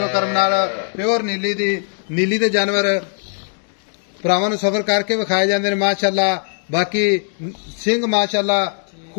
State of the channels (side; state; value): right; silent; 56 dB below the other